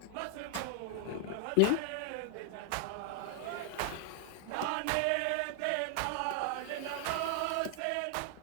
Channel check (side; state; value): both; different; correlation 0.00